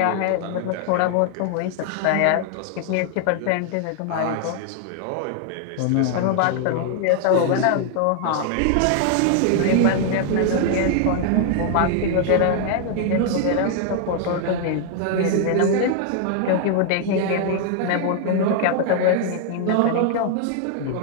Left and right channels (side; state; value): both; different; correlation 0.00